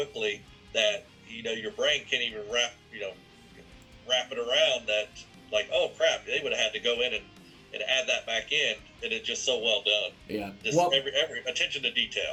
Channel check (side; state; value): both; identical; correlation 1.00